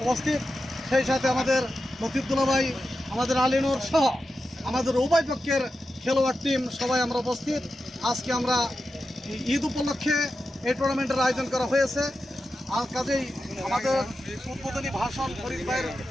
উপস্থিত, সেই সাথে আমাদের লতিফুল্লাহ ভাই, আমাদের আলিনুর সহ আমাদের উভয় পক্ষের খেলোয়াড় টিম সবাই আমরা উপস্থিত। আজকে আমরা ঈদ উপলক্ষে এই টুর্নামেন্টের আয়োজন করা হয়েছে। আর কাজেই আমাদের উদ্বোধনী ভাষণ ফরিদ ভাইয়ের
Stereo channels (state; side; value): normal; both; correlation 0.90